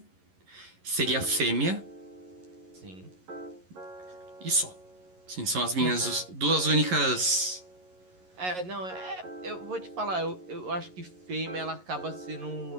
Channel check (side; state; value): left; late; 11 ms